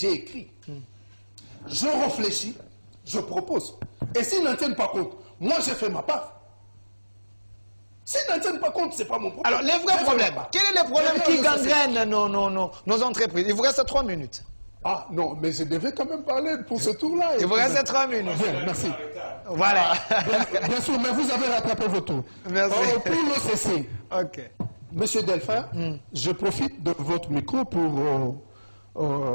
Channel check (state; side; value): inverted; both; correlation -1.00